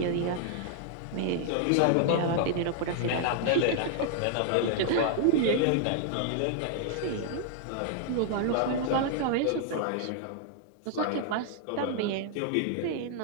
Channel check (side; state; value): both; different; correlation 0.00